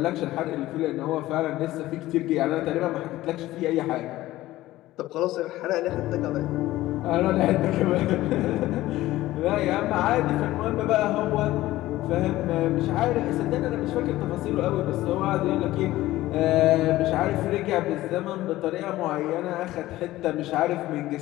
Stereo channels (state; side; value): quieter; right; 16.3 dB